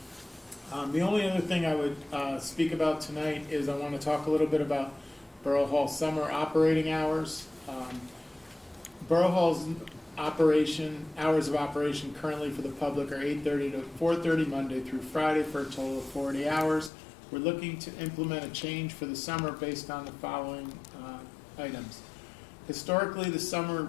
The only other thing I would speak about tonight is I want to talk a little bit about Borough Hall summer operating hours. Borough Hall's hours of operation currently for the public are 8:30 to 4:30 Monday through Friday for a total of 40 hours. We're looking to implement a change for the summer based on the following items. Historically, the summer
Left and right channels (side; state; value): right; drops out; at 16.9 s